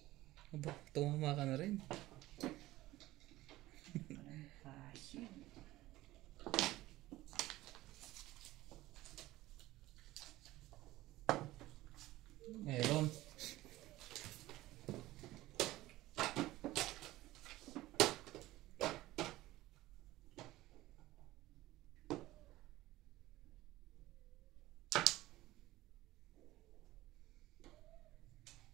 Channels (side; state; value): left; quieter; 17.1 dB